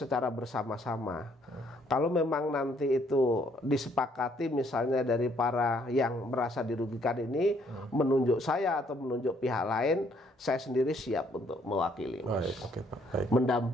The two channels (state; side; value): normal; both; correlation 0.67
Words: bersama-sama. Kalau memang nanti itu disepakati misalnya dari para yang merasa dirugikan ini menunjuk saya atau menunjuk pihak lain, saya sendiri siap untuk mewakili, Mas. Baik.